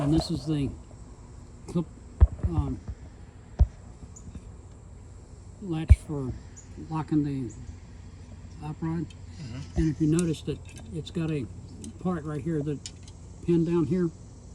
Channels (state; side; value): identical; both; correlation 1.00